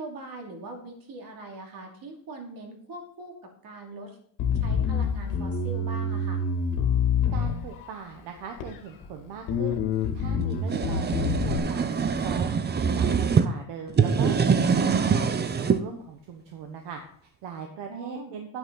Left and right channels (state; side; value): normal; both; correlation 0.42